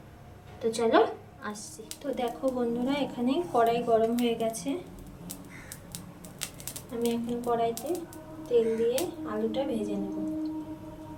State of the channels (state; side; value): identical; both; correlation 1.00